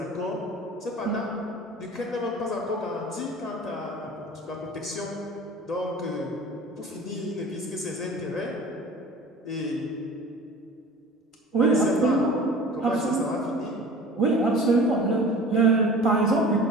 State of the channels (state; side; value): normal; both; correlation 0.41